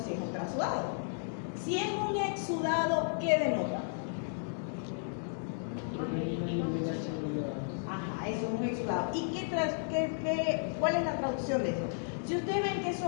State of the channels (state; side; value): silent; right; digital silence